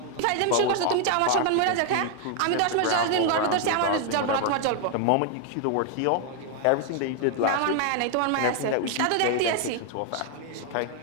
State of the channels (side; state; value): both; different; correlation 0.00